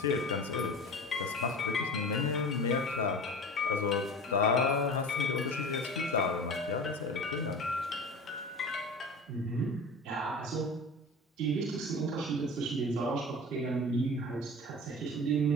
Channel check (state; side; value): normal; both; correlation 0.34